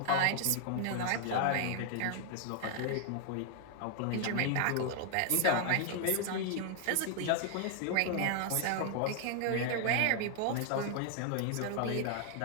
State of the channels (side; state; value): both; different; correlation 0.00